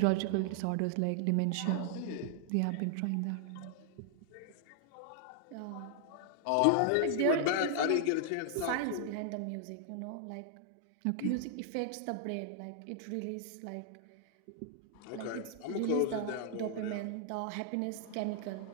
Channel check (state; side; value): different; both; correlation -0.01